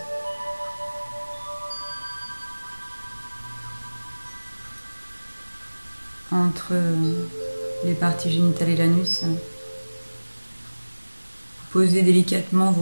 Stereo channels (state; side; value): inverted; both; correlation -1.00